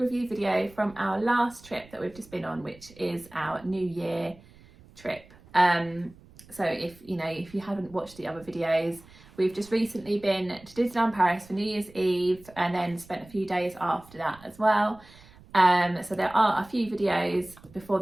video from our last trip that we've just been on, which is our New Year trip. So if you haven't watched the other videos, we've just recently been to Disneyland Paris for New Year's Eve and then spent a few days after that as well. So there are a few videos before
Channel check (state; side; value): noise; right; rumble, 24 dB below the sound